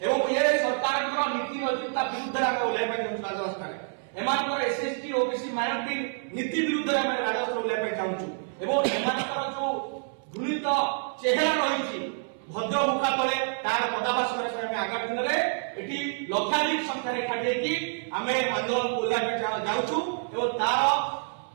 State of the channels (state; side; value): silent; left; 60 dB below the other